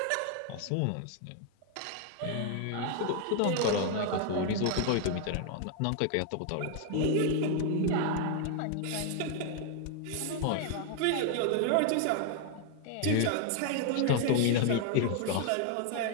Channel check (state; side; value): different; both; correlation 0.00